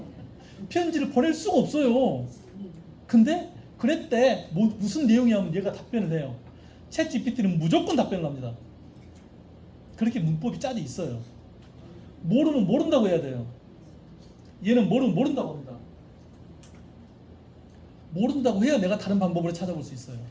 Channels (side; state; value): both; identical; correlation 1.00